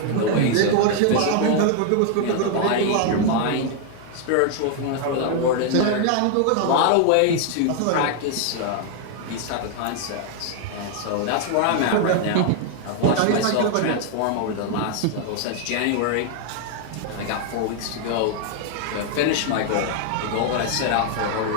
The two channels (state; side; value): different; both; correlation 0.00